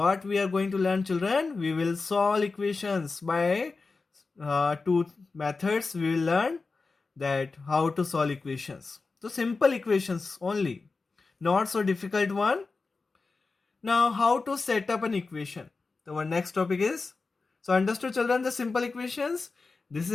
we are going to learn, children, we will solve equations by two methods. We will learn that how to solve equations. So simple equations only, not so difficult one. Now how to set up an equation. So our next topic is, so understood children, the simple equations. This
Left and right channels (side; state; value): right; quieter; 4.1 dB